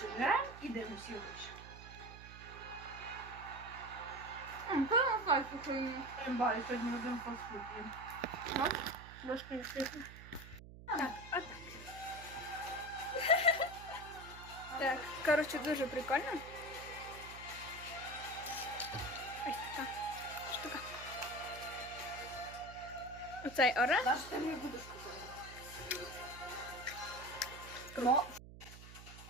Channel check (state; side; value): noise; right; hum, 15 dB below the sound